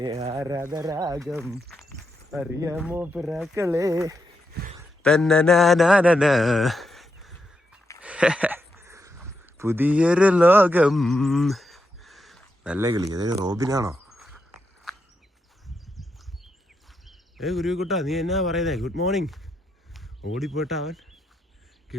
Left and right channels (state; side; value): normal; both; correlation 0.83